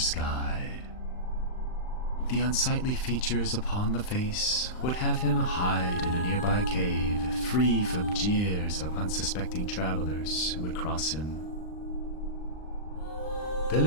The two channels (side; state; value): right; late; 39 ms